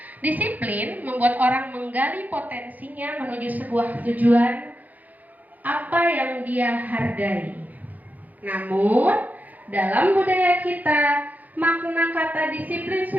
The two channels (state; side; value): late; left; 0.080 ms